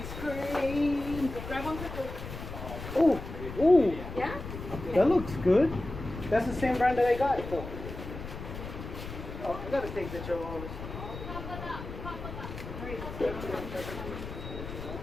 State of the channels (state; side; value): noise; left; rumble, 9 dB below the sound